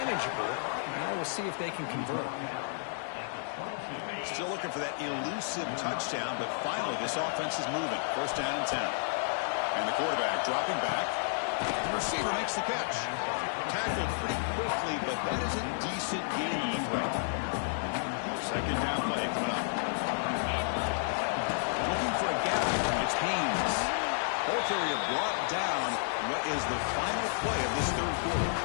Now we'll see if they can convert. Still looking for that elusive touchdown, but finally this offense is moving. First down and 10. And the quarterback dropping back. The receiver makes the catch. Tackled pretty quickly, but that is a decent gain in the throw. Second down play coming up. Looking for a gap. It's Haynes. Both area brought down. What is the final play of this third quarter?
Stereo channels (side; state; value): right; silent; digital silence